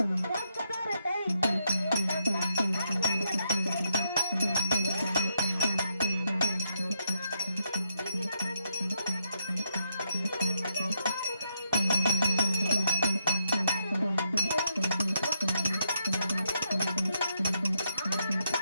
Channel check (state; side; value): inverted; both; correlation -0.79